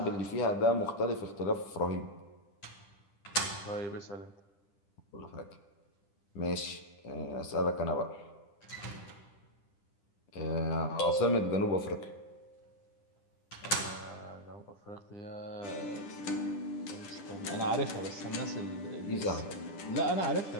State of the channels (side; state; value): right; late; 10 ms